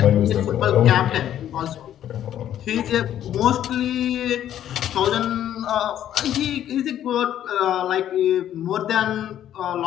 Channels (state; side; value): quieter; right; 11.2 dB